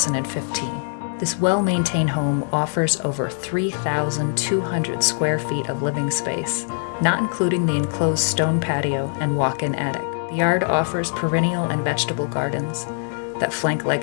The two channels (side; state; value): right; silent; digital silence